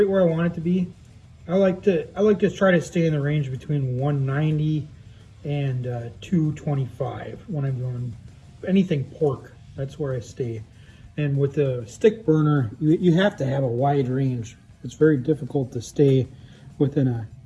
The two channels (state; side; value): identical; both; correlation 1.00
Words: where I want it to be. I like to try to stay in the range between 190 and 225 when I'm doing anything pork. That's where I stay. And with the stick burner, you have to have a wide range. It's very difficult to stay within a